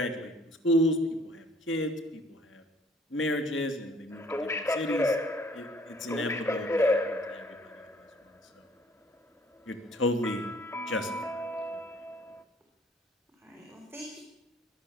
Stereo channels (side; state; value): both; normal; correlation 0.58